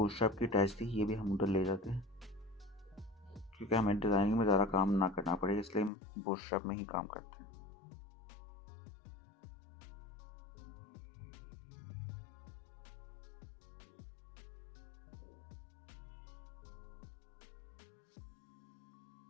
की अटैच थी, ये भी हम उधर ले जाते हैं, क्योंकि हमें डिज़ाइनिंग में ज़्यादा काम ना करना पड़े, इसलिए हम बूटस्ट्रैप में ही काम करते हैं।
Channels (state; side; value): drops out; right; at 5.9 s